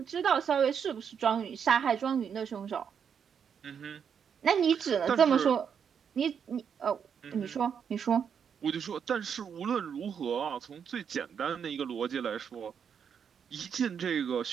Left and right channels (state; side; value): quieter; left; 7.4 dB